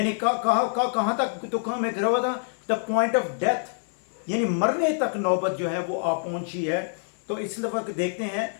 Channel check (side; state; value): right; silent; digital silence